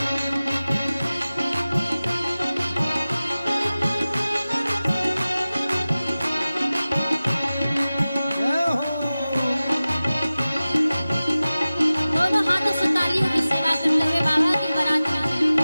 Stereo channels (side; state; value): both; inverted; correlation -0.96